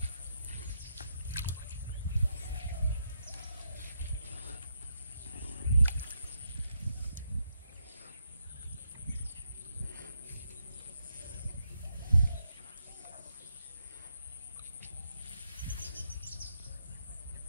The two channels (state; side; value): inverted; both; correlation -0.81